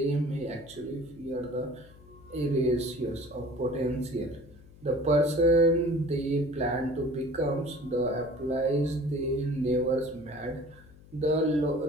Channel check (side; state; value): left; noise; hum, 22 dB below the sound